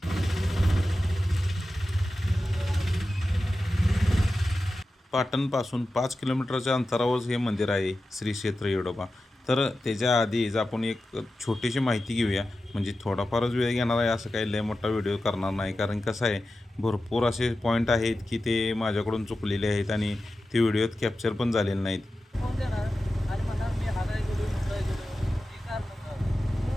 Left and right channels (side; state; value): both; normal; correlation 0.93